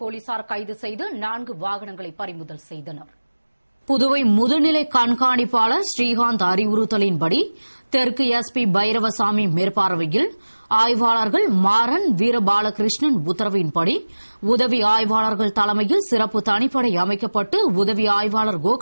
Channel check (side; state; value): both; inverted; correlation -1.00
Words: போலீசார் கைது செய்து 4 வாகனங்களை பறிமுதல் செய்தனர். புதுவை முதுநிலை கண்காணிப்பாளர் ஸ்ரீகாந்த் அறிவுறுத்தலின்படி தெற்கு எஸ்பி பைரவசாமி மேற்பார்வையில் ஆய்வாளர்கள் மாறன் வீரபாலகிருஷ்ணன் உத்தரவின்படி உதவி ஆய்வாளர்கள் தலைமையில் சிறப்பு தனிப்படை அமைக்கப்பட்டு உதவி ஆய்வாளர்